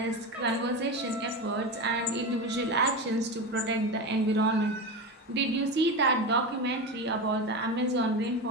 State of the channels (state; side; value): normal; both; correlation 0.21